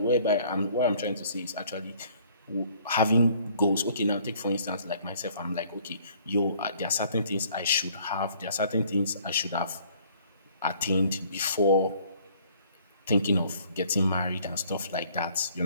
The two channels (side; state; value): both; inverted; correlation -0.58